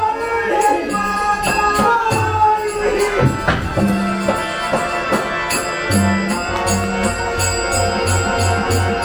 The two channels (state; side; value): identical; both; correlation 1.00